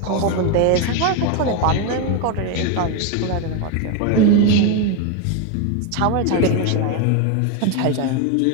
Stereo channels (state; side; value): different; both; correlation 0.02